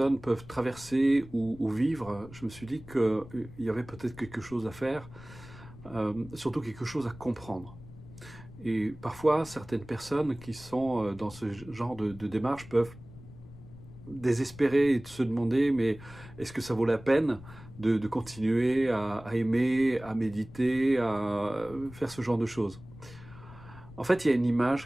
peuvent traverser ou vivre, je me suis dit qu'il y avait peut-être quelque chose à faire, surtout quelque chose à comprendre. Et parfois, certaines personnes qui sont dans ce genre de démarche peuvent désespérer et se demander, mais est-ce que ça vaut la peine de continuer à aimer, à méditer, à faire ce genre de choses? En fait, il y a une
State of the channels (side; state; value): left; noise; rumble, 18 dB below the sound